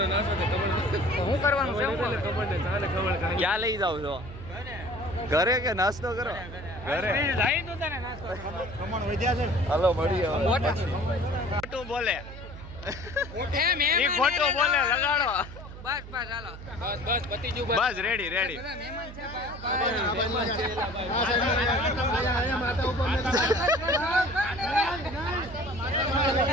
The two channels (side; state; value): right; noise; hum, 13 dB below the sound